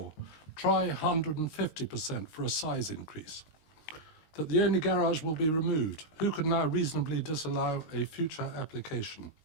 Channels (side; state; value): right; late; 19 ms